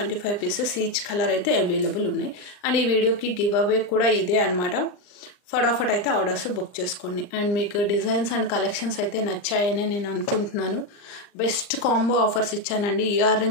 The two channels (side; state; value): right; late; 39 ms